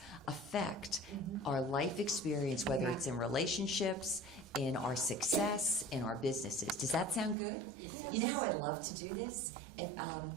affect our life experience, whether it's in relationships, in our success, in our businesses. Does that sound good? You know how I'd love to do this?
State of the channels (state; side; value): drops out; left; at 7.4 s